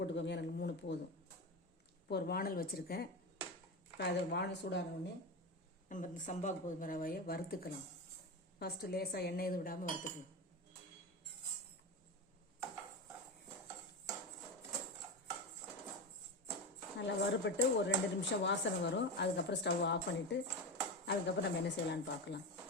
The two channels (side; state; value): both; normal; correlation 0.20